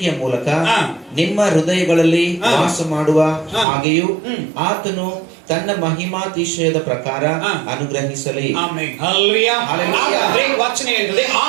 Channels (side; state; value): left; drops out; at 3.7 s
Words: ಮೂಲಕ ನಿಮ್ಮ ಹೃದಯಗಳಲ್ಲಿ ವಾಸ ಮಾಡುವ ಹಾಗೆಯೂ ಆತನು ತನ್ನ ಮಹಿಮಾತಿಶಯದ ಪ್ರಕಾರ ಅನುಗ್ರಹಿಸಲಿ. ವಚನ ಹೇಳ್ತದೆ,